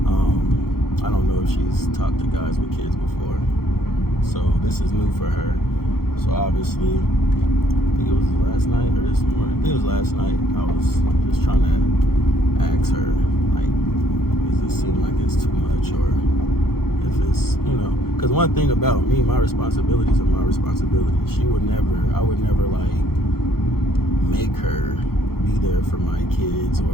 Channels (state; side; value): late; right; 0.94 ms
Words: I don't know if she's talked to guys with kids before, so this is new for her. So obviously, I think it was last night or this morning. I think it was last night. I was just trying to ask her, like, does it seem like it's too much, or If it's, because one thing about me, my responsibilities are my responsibilities. I would never like make her be there for my kids,